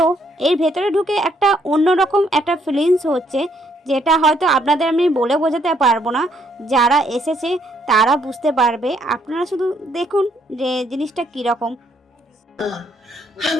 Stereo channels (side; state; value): both; normal; correlation 0.70